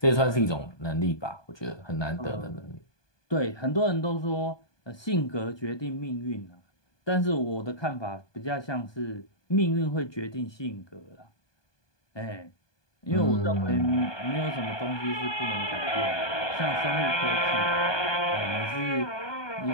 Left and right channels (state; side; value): late; right; 1.2 ms